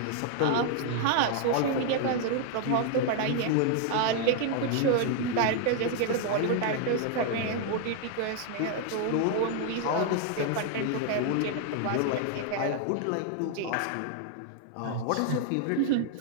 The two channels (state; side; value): different; both; correlation 0.00